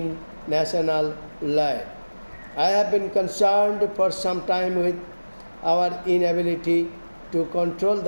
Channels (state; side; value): inverted; both; correlation -1.00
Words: national life. I have been concerned for some time with our inability to control